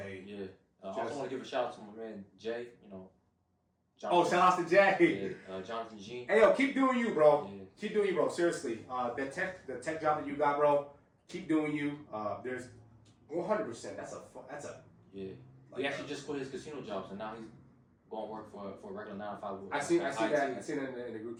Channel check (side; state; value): both; identical; correlation 1.00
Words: yeah. I also want to give a shout out to my man Jay. You know. Oh, shout out to Jay. Yeah, Jonathan G. Hey yo, keep doing you, bro. Yeah. Keep doing you, bro. Seriously, the tech job that you got, bro. Keep doing you. There's 100%. That's a. Yeah. He actually just quit his casino job, so now he's going to work for a regular 9 to 5. I seen that. I seen it in the group